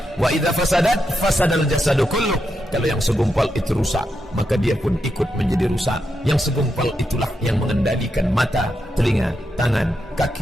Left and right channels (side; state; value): both; normal; correlation 0.85